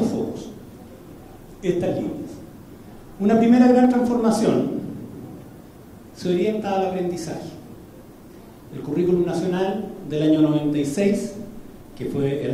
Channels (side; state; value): both; identical; correlation 1.00